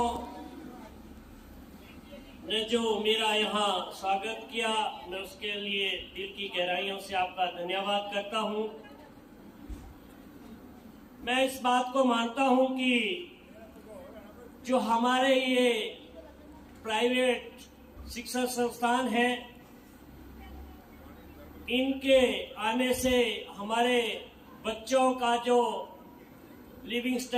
ने जो मेरा यहाँ स्वागत किया, मैं उसके लिए दिल की गहराइयों से आपका धन्यवाद करता हूँ। मैं इस बात को मानता हूँ कि जो हमारे ये प्राइवेट शिक्षण संस्थान हैं, इनके आने से हमारे बच्चों का जो लिविंग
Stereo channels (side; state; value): both; identical; correlation 1.00